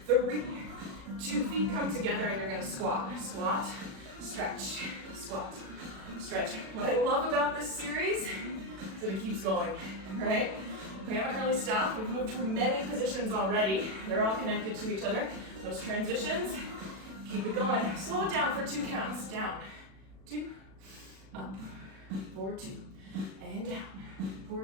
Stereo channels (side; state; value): left; late; 36 ms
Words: 3, 2. Feet come together and you're gonna squat. Squat, stretch, squat, stretch. What I love about this series is that it keeps going, right? We haven't really stopped. We've moved through many positions already. They're all connected to each other. Those transitions, keep it going. Slow it down for 2 counts. Down, 2, up, 4, 2, and down,